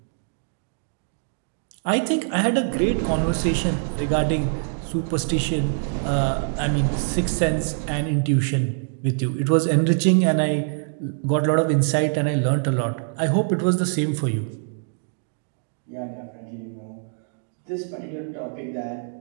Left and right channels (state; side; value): silent; left; digital silence